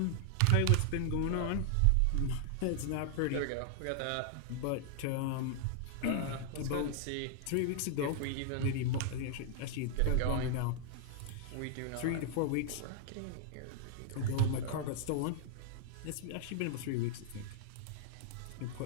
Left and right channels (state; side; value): different; both; correlation -0.01